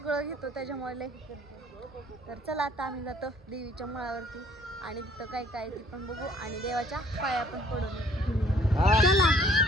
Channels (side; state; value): both; normal; correlation 0.59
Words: घेतो, त्याच्यामुळे लय ही करते. तर चला आता आम्ही जातो देवीच्या माळावरती आणि तिथं काय काय ती पण बघू आणि देवाच्या पाया पण पडून. चला